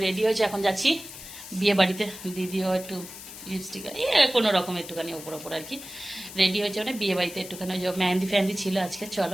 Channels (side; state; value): left; noise; hiss, 13 dB below the sound